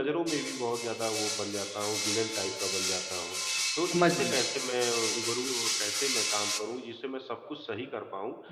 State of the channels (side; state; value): both; identical; correlation 1.00